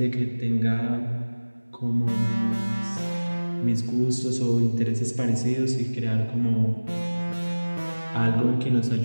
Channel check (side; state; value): both; inverted; correlation -1.00